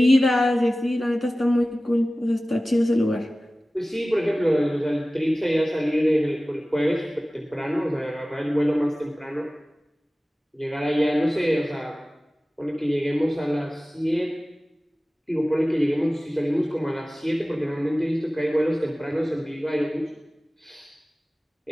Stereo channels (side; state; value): both; normal; correlation 0.97